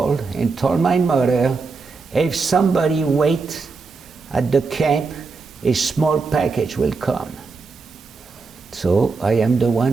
and told my mother, if somebody wait at the camp, a small package will come. So I am the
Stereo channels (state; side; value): quieter; left; 4.5 dB